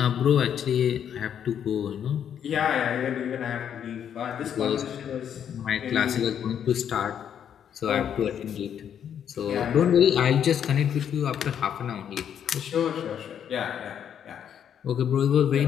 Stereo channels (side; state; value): right; quieter; 8.9 dB